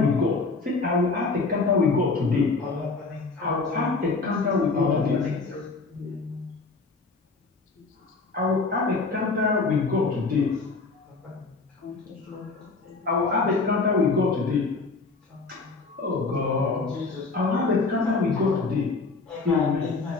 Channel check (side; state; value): right; quieter; 4.0 dB